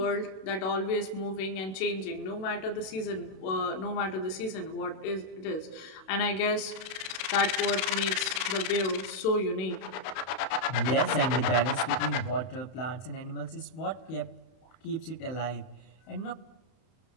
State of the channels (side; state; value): right; late; 32 ms